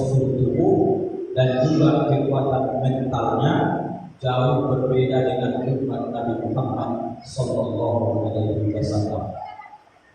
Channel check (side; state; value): both; identical; correlation 1.00